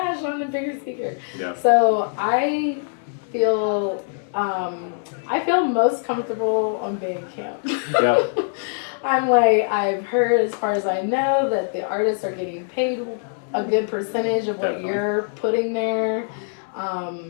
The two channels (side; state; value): right; silent; digital silence